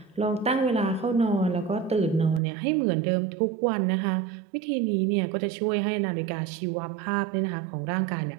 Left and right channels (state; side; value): drops out; left; at 2.4 s